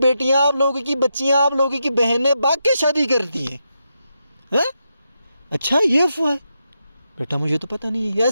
آپ لوگوں کی بچیاں، آپ لوگوں کی بہنیں باغ کے شادی کرتی ہیں. ہاں اچھا یہ افواہ ہے بیٹا، مجھے تو پتہ نہیں ہے. یار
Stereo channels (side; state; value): both; inverted; correlation -0.85